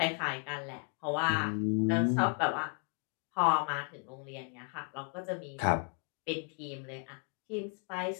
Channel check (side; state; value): right; quieter; 39.4 dB